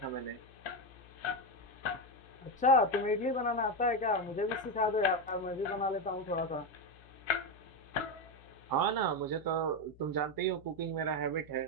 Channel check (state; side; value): noise; left; hum, 23 dB below the sound